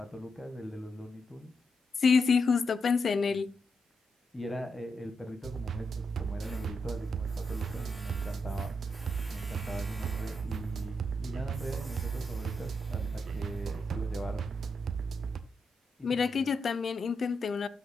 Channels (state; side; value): normal; both; correlation 0.83